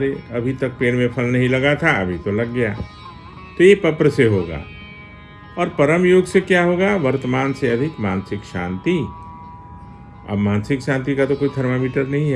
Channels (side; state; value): both; identical; correlation 1.00